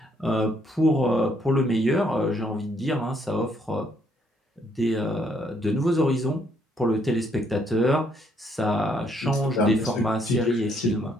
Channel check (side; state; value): both; normal; correlation 0.70